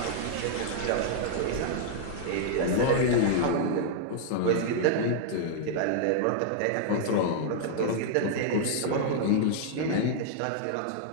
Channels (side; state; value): both; different; correlation -0.01